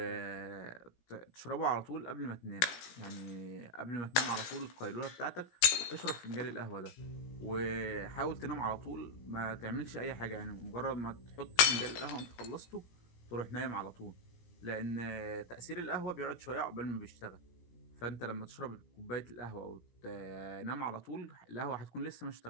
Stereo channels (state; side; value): late; right; 17 ms